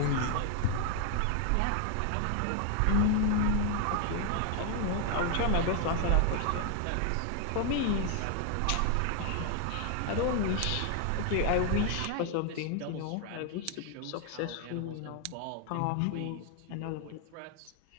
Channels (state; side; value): different; both; correlation 0.00